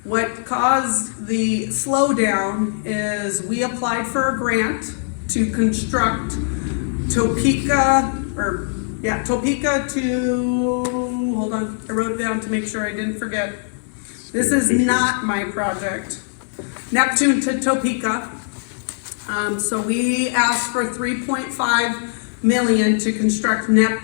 What caused the slowdown is we applied for a grant to construct Topeka to, hold on, I wrote it down to make sure I didn't forget. This is not my project. Neptune to Topeka. So we asked for 3.5 million to construct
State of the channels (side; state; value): right; silent; 65 dB below the other